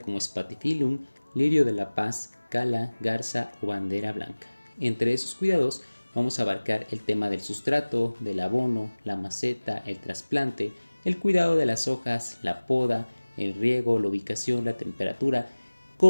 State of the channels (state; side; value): inverted; both; correlation -1.00